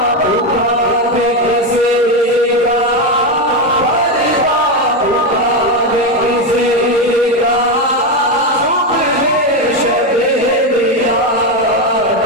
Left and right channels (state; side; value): normal; both; correlation 0.10